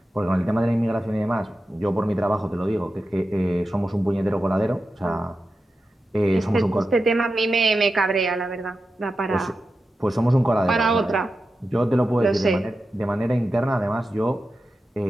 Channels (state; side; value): normal; both; correlation 0.91